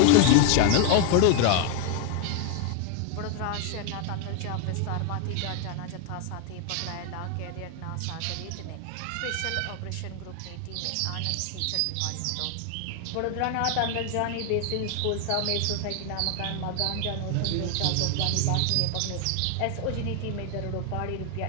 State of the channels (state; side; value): different; both; correlation 0.01